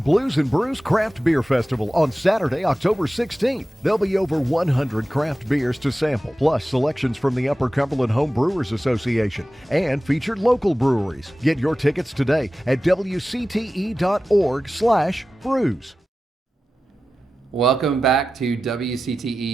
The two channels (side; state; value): both; normal; correlation 0.94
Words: and Brews Craft Beer Festival on Saturday, October 16th. There'll be over 100 craft beers to sample, plus selections from the Upper Cumberland Home Brewers Association and featured local breweries. Get your tickets today at wcte.org/brews. Welcome back to